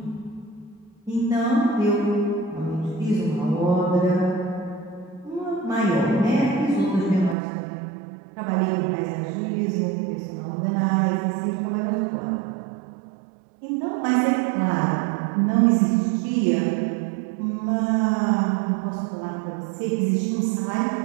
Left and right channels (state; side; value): drops out; left; at 7.4 s